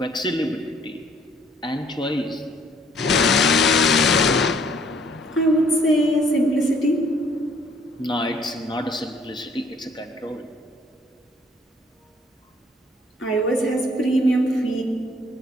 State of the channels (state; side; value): normal; both; correlation 0.61